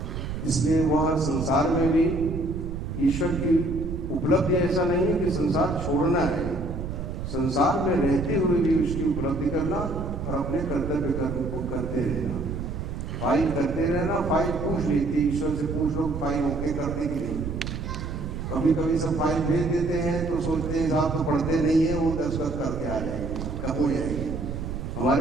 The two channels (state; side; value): noise; right; rumble, 5 dB below the sound